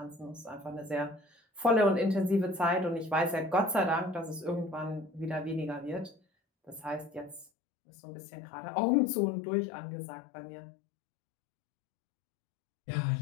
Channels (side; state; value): right; drops out; at 7.5 s